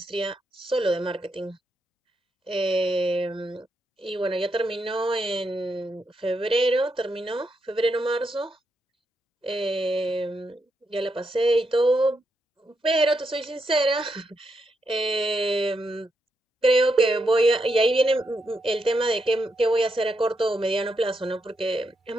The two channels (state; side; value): normal; both; correlation 0.82